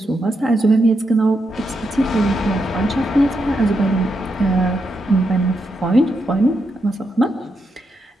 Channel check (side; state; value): both; normal; correlation 0.83